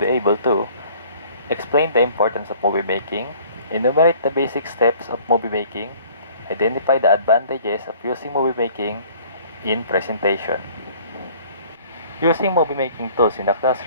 able to explain the importance of movie making, enumerate the basic steps of movie making, identify the advantages of using movie making in presentation. Using movie making tools in the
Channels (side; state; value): both; inverted; correlation -0.53